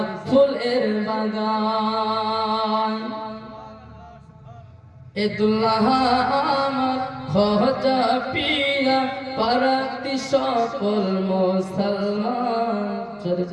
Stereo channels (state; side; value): identical; both; correlation 1.00